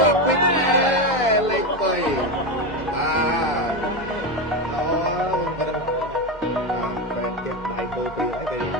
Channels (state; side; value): normal; both; correlation 0.14